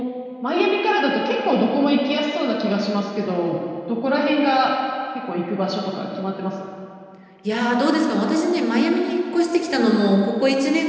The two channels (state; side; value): identical; both; correlation 1.00